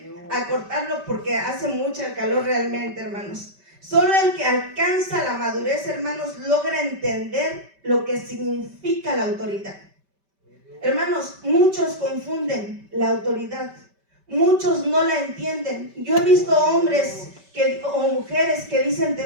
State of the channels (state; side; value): late; left; 5.1 ms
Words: acortarlo porque hace mucha calor realmente, hermanos. Solo el que alcanza la madurez, hermanos, logra entender lo que significa la autoridad. Hermanos, muchos confunden la autoridad. Muchos no la entienden. Yo he visto hombres o mujeres que dicen